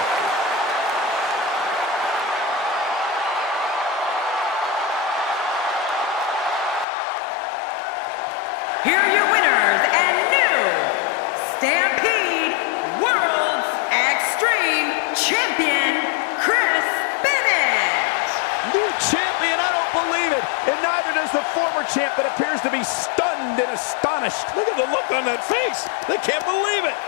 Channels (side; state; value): right; drops out; at 6.9 s